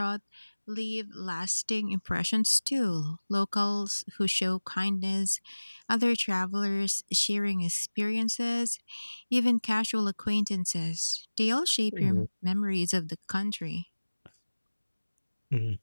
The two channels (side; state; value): both; inverted; correlation -1.00